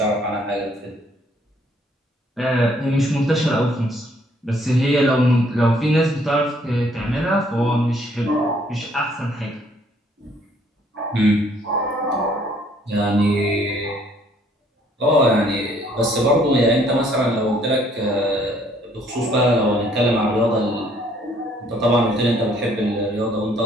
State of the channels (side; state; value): both; normal; correlation 0.63